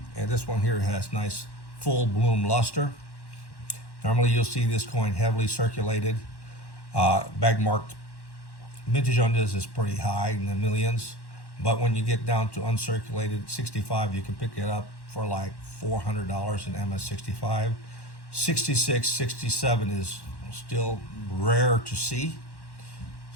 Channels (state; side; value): late; right; 1.1 ms